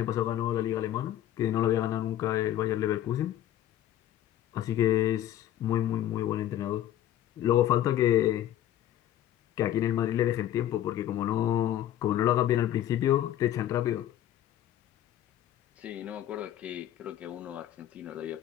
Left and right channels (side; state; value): right; quieter; 12.2 dB